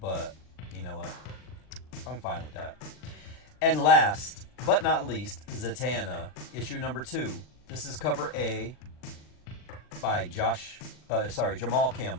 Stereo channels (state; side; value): late; right; 39 ms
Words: but you know what? I'm fine with that. And last but not least, Zatanna, issue number 2. This is cover A by Jamal